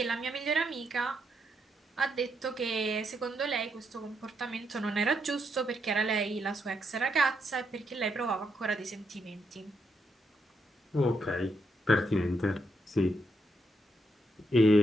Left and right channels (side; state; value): both; normal; correlation 0.79